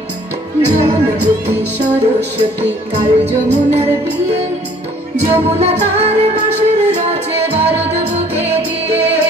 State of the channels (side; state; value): both; normal; correlation 0.57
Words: যমুনাবতী সরস্বতী কাল যমুনার বিয়ে, যমুনা তার বাঁশের রচে বারদ বুকে দিয়ে,